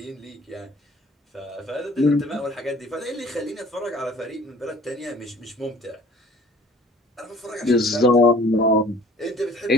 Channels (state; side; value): normal; both; correlation 0.51